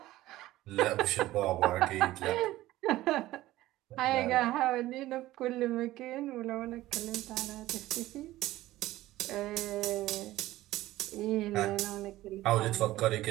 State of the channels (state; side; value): quieter; left; 16.2 dB